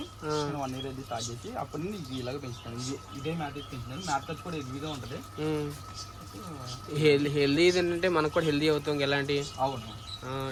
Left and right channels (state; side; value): identical; both; correlation 1.00